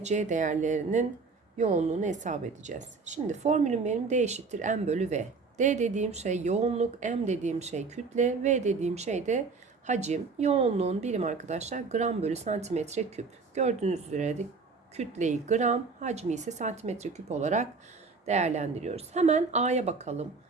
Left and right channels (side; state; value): left; quieter; 4.4 dB